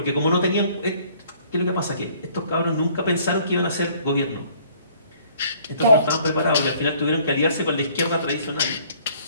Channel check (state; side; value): inverted; both; correlation -0.58